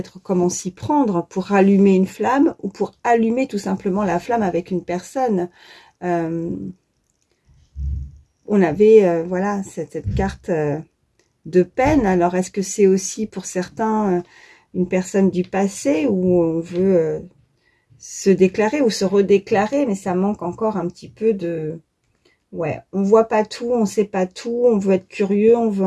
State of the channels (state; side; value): identical; both; correlation 1.00